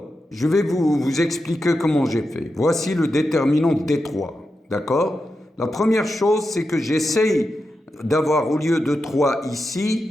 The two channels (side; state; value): both; normal; correlation 0.89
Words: je vais vous expliquer comment j'ai fait. Voici le déterminant D3, d'accord? La première chose, c'est que j'essaye d'avoir, au lieu de 3